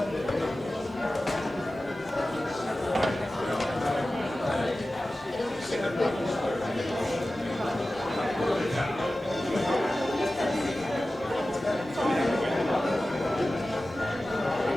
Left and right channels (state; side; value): normal; both; correlation 0.95